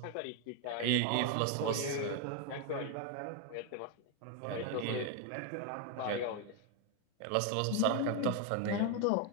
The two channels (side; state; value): both; different; correlation 0.01